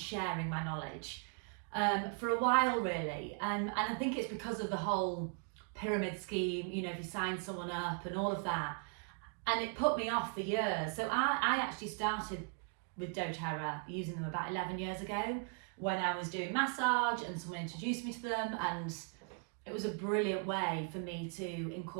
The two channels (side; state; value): left; quieter; 36.7 dB